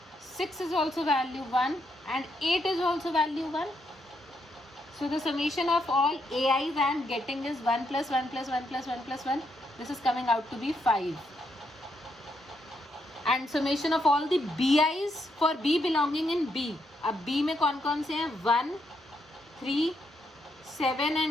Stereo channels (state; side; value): normal; both; correlation 0.78